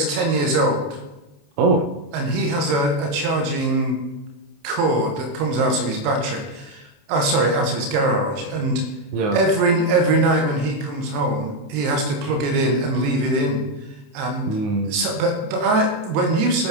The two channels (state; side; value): late; left; 29 ms